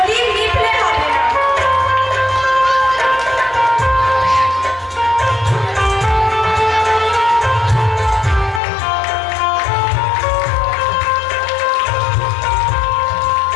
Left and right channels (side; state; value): right; drops out; at 8.6 s